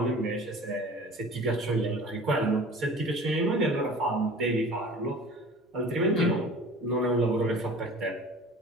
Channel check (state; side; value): normal; both; correlation 0.43